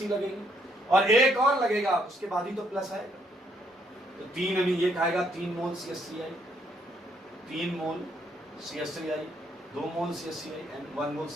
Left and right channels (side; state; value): both; normal; correlation 0.71